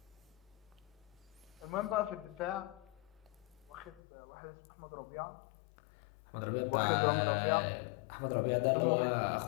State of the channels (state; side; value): drops out; right; at 4.0 s